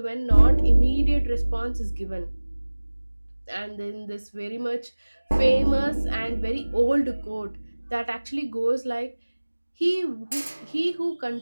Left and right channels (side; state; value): both; inverted; correlation -1.00